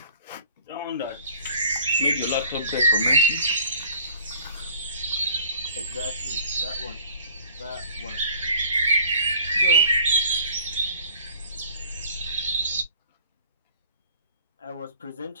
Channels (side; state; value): both; inverted; correlation -0.50